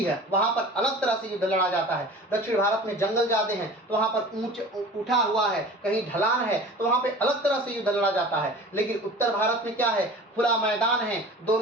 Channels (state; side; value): normal; both; correlation 0.40